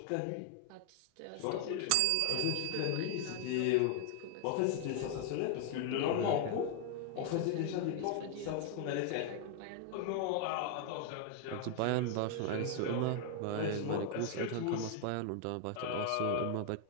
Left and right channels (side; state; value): both; different; correlation 0.00